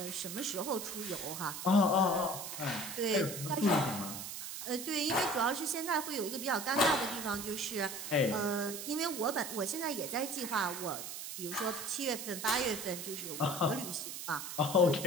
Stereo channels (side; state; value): right; noise; hiss, 7 dB below the sound